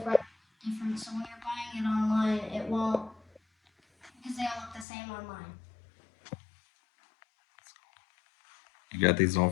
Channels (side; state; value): right; drops out; at 4.9 s